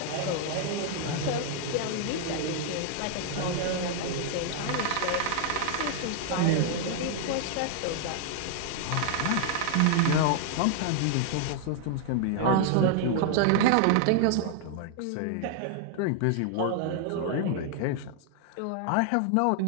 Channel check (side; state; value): both; different; correlation -0.01